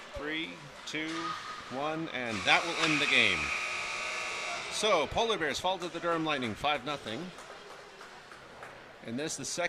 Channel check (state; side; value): identical; both; correlation 1.00